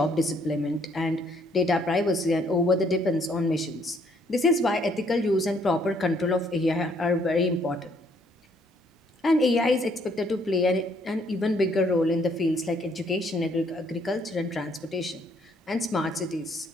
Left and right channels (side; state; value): both; normal; correlation 0.66